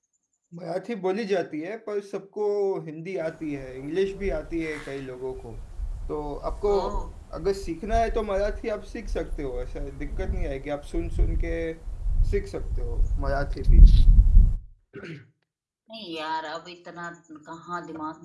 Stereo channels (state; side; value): identical; both; correlation 1.00